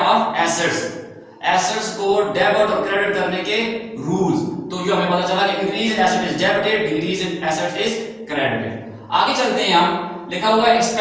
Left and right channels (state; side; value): identical; both; correlation 1.00